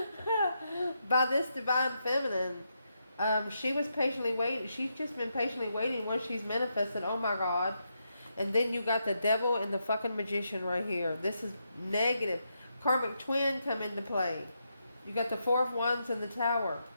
by this divine feminine. She was patiently waiting. She's just been patiently waiting once she's manifested. Oh my God. And then you got the devil and the fucking magician right here. This is negative. Karmic twin come into play. You got the Four of Wands and the Tower.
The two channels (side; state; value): both; inverted; correlation -0.82